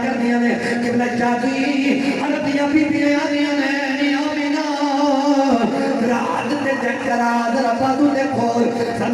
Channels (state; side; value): identical; both; correlation 1.00